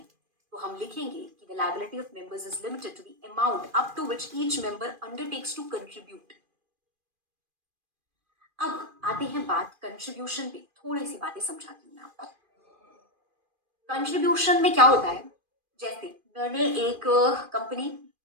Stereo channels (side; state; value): left; late; 2.4 ms